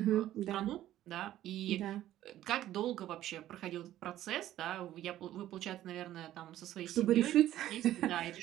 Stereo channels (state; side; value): quieter; left; 13.3 dB